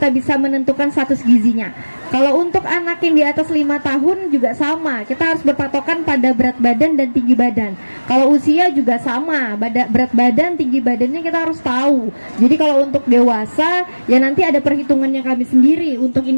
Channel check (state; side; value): inverted; both; correlation -1.00